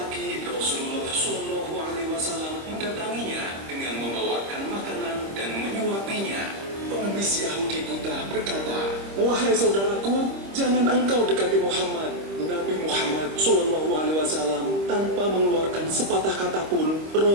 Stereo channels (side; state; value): left; late; 25 ms